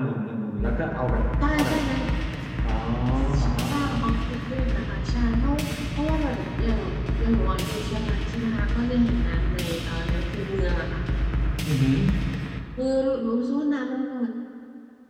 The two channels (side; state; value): both; identical; correlation 1.00